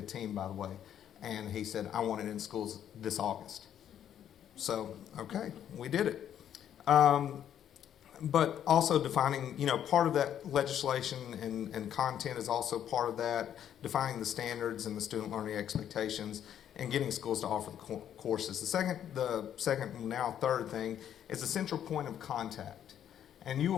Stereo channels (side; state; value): right; quieter; 10.0 dB